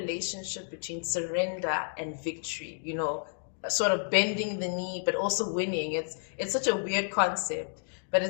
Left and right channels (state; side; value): silent; right; digital silence